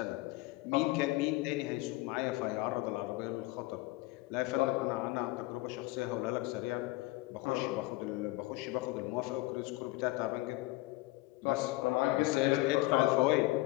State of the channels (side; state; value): right; quieter; 20.2 dB